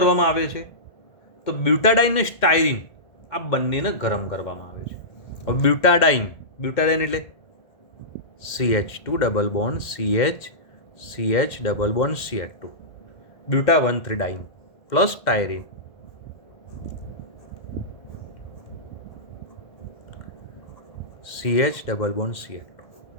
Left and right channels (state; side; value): late; right; 2.1 ms